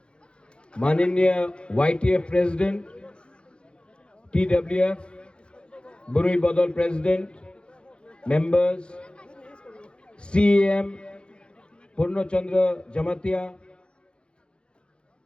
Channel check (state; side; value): late; right; 0.055 ms